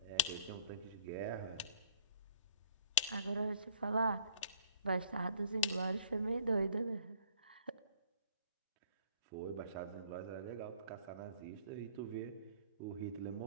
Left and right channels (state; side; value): inverted; both; correlation -0.52